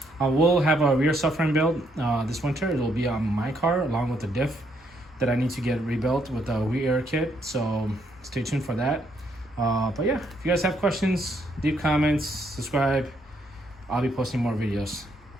I will have a rear subframe build this winter. It will be on my car along with the diff that I need to get rebuilt with the rear kit. So stay tuned for that. But yeah, if you guys have questions, leave comments, subscribe. I'll be posting more videos.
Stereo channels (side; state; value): both; normal; correlation 0.73